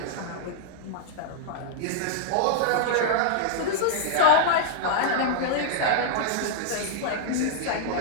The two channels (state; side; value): different; both; correlation 0.00